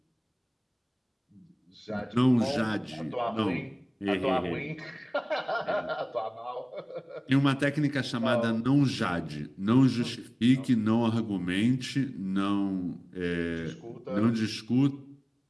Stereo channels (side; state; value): both; identical; correlation 1.00